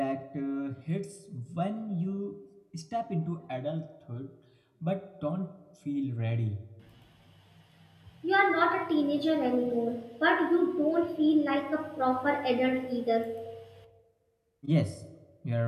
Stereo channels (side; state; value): both; identical; correlation 1.00